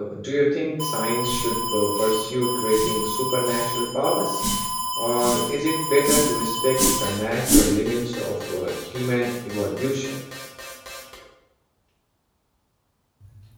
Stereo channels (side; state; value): both; identical; correlation 1.00